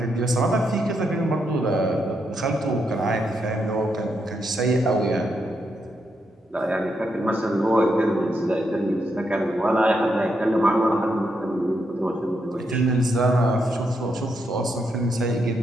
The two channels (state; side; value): normal; both; correlation 0.80